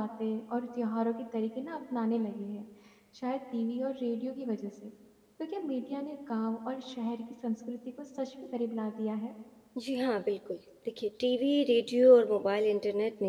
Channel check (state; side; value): identical; both; correlation 1.00